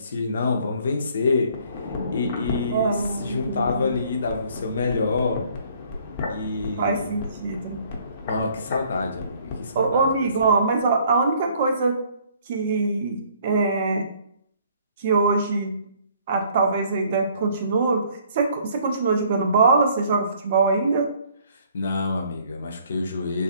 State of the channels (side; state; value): both; inverted; correlation -0.60